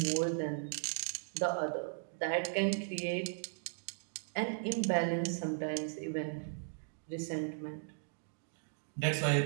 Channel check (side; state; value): left; silent; digital silence